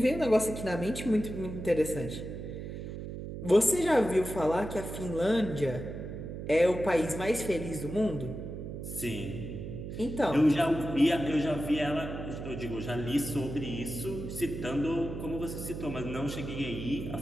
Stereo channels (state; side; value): noise; right; hum, 8 dB below the sound